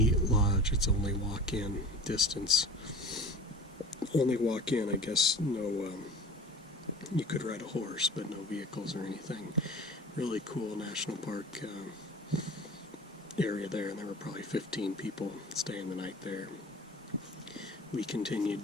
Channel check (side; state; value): both; normal; correlation 0.39